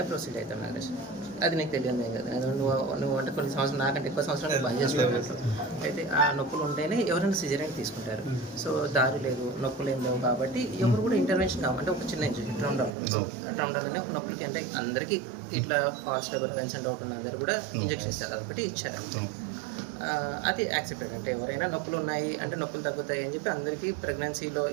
ప్రొసీడ్ అవుతాం. నాగేష్ అది నీకు తెలియదు కదా. నువ్వు అంటే కొన్ని సంవత్సరాలు నాకంటే ఎక్కువ సంవత్సరాలు బంద్ చేసుకోవాలి. అయితే ఆ నొప్పులు ఉంటేనే ఎవరైనా సిజరీన్ తీసుకుంటారు. సో దారి లేదు, నొప్పులు ఏం లేవు కాబట్టి ఎవరు కూడా ఇంటర్వెన్షన్ కావాలంటే ఒక చిన్న ఇంజెక్షన్ ట్రౌండాల్ అనే ఒక నొప్పులకి అంటే అందరికీ ఇట్లా false labour pains and doubt ఉన్న అందరూ కూడా ఇంజెక్షన్ ఇస్తారు. అదొకటి ఇచ్చారు. అది యాక్సెప్టెడ్. అంటే ఎవరైనా నొప్పులు ఉన్నాయి అంటే నొప్పులు తగ్గుతాయి అని చెప్పి అందరికీ ప్రెగ్నెన్సీలో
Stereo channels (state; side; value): drops out; left; at 12.9 s